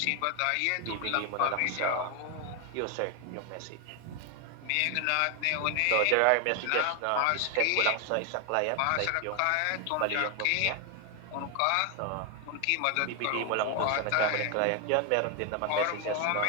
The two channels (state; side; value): different; both; correlation 0.01